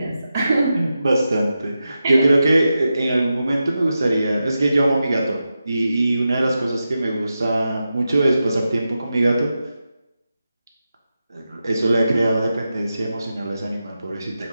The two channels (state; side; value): inverted; both; correlation -0.90